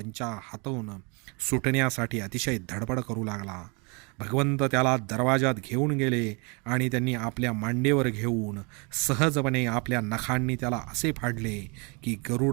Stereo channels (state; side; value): quieter; left; 31.8 dB